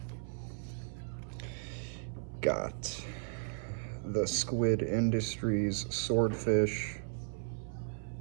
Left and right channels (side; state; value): left; silent; 54 dB below the other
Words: Got the Squid Industries Swordfish,